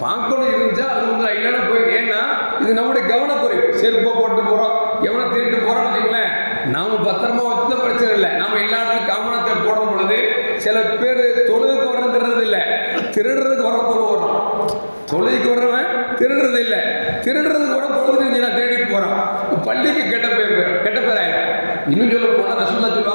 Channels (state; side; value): inverted; both; correlation -1.00